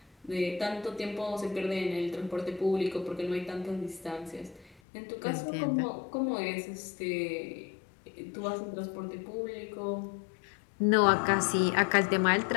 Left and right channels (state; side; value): drops out; right; at 4.8 s